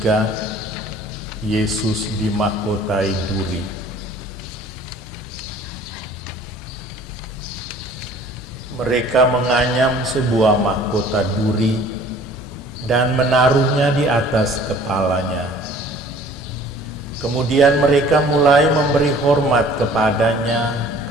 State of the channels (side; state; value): both; normal; correlation 0.51